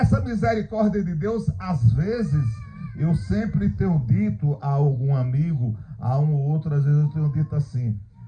misericórdia de Deus, às vezes, eu sempre tenho dito a algum amigo, a um ou outro, às vezes eu tenho dito assim,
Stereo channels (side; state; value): both; identical; correlation 1.00